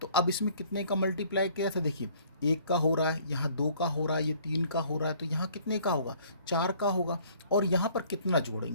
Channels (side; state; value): both; inverted; correlation -0.57